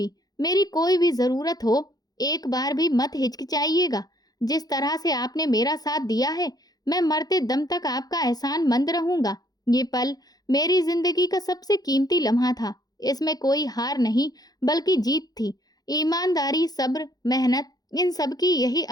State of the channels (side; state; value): right; late; 0.19 ms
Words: मेरी कोई भी ज़रूरत हो, एक बार भी मत हिचकिचाइएगा। जिस तरह से आपने मेरा साथ दिया है, मैं मरते दम तक आपका एहसानमंद रहूंगा। ये पल मेरी जिंदगी का सबसे कीमती लम्हा था। इसमें कोई हार नहीं बल्कि जीत थी। ईमानदारी, सब्र, मेहनत, इन सब की यही